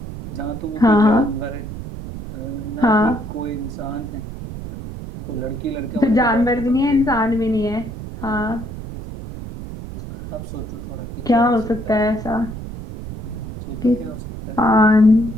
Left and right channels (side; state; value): right; noise; rumble, 10 dB below the sound